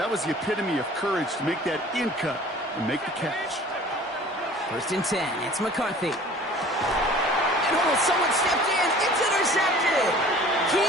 was the epitome of courage to make that in cut and make the catch. First and 10, it's McCarthy. And someone stepped in. It's intercepted.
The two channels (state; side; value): normal; both; correlation 0.47